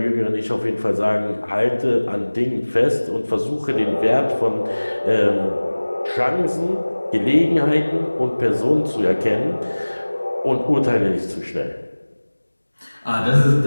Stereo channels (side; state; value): both; inverted; correlation -1.00